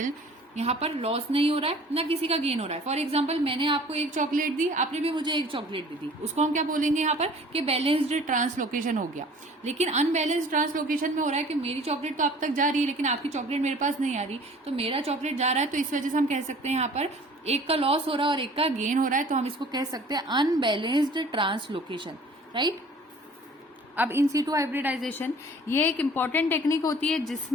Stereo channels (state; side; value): normal; both; correlation 0.49